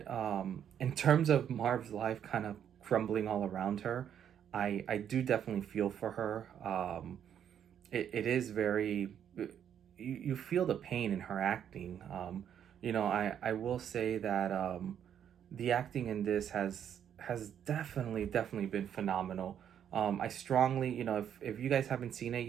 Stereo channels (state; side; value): quieter; left; 9.2 dB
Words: in terms of Marv's life kind of crumbling all around her, I do definitely feel for her. It is very, you feel the pain in her acting. I will say that the acting in this has definitely been phenomenal. I strongly, if you guys haven't seen it